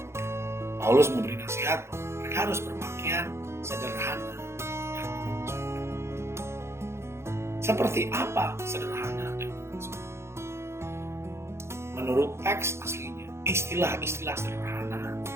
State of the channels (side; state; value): left; late; 0.13 ms